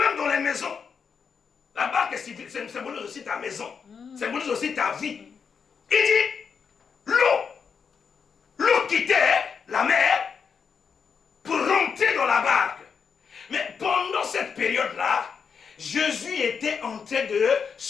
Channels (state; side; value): quieter; right; 6.2 dB